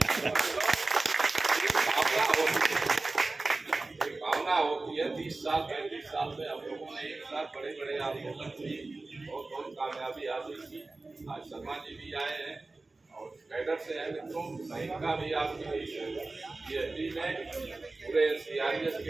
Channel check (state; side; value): quieter; left; 3.3 dB